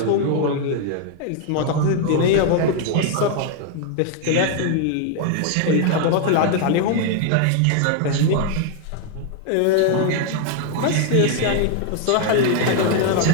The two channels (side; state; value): both; different; correlation 0.00